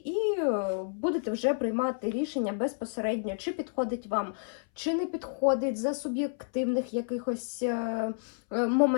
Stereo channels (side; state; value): right; silent; 58 dB below the other